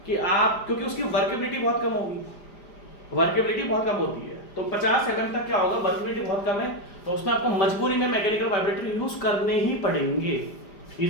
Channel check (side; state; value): right; late; 5.0 ms